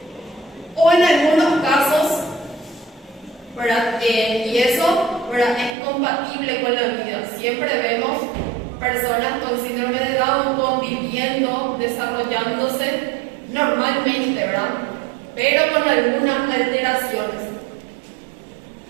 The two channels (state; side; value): drops out; left; at 5.8 s